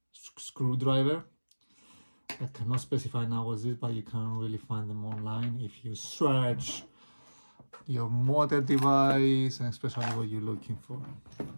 screwdriver. I cannot specify now what this, but you can really find them online if you search your model device and especially what you're looking for.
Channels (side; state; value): both; inverted; correlation -1.00